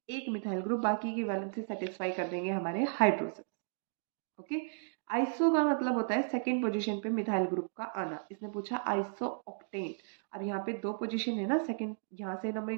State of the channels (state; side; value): silent; left; digital silence